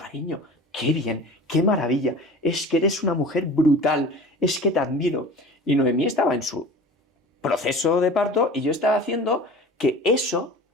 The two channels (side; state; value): both; normal; correlation 0.38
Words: qué bien, qué maravilla, es que eres una mujer brutal, es que te admiro. Y Noemí estaba en su proceso de parto y yo estaba haciendo que eso